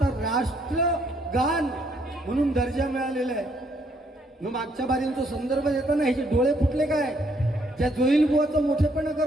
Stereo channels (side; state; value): both; normal; correlation 0.69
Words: राष्ट्रगान म्हणून दर्जा मिळालेला आहे. मग मागच्या बारींचा संदर्भ देताना ह्याचे डोळे फुटले काय, त्या जोईल बुवाचा मोठेपणा